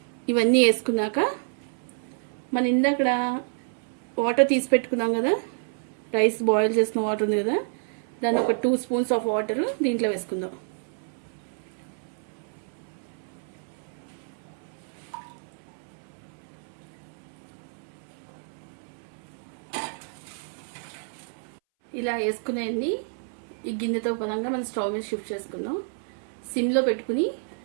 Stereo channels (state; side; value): silent; left; 59 dB below the other